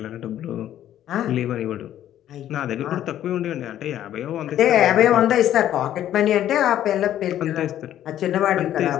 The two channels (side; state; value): right; quieter; 11.8 dB